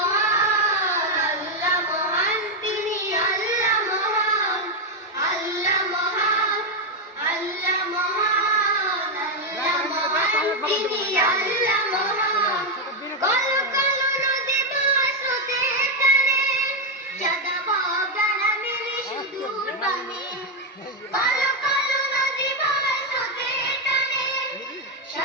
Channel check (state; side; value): normal; both; correlation 0.03